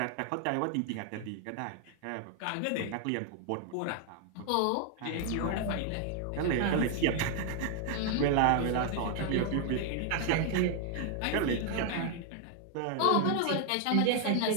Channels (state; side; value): different; both; correlation 0.00